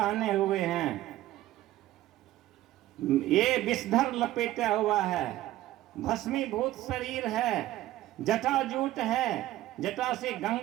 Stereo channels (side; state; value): left; quieter; 15.0 dB